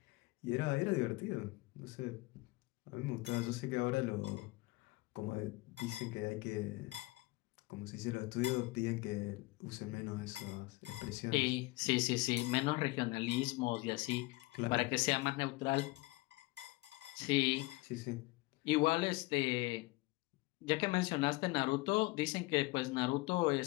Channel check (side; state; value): right; quieter; 22.4 dB